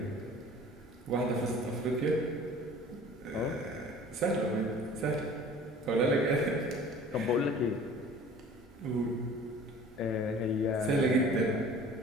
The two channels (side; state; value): both; normal; correlation 0.46